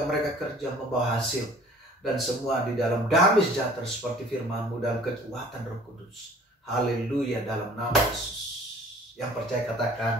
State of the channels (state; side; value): normal; both; correlation 0.51